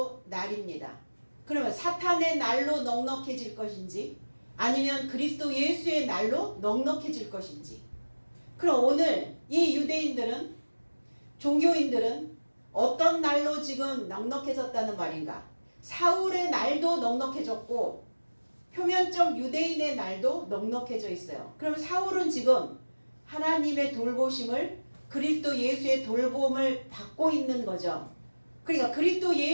날입니다. 그러면 사탄의 날로 넉넉해질 것인지 아니면 그리스도 예수의 날로 넉넉해질 것인지. 그럼 오늘 이 유대인들은, 종교인들은 어떤 날로 지금 넉넉해졌다는 말인가? 사울의 날도 넉넉해졌고 표면적 유대인의 날도 넉넉해져 있어요. 그럼 사울은 지금 하나님의 돌보심을, 그리스도 예수의 돌봄을 받고 있는 거죠. 그러니까 그리스도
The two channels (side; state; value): both; inverted; correlation -1.00